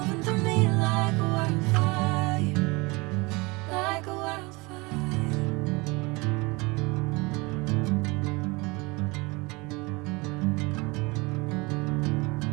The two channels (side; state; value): left; quieter; 25.5 dB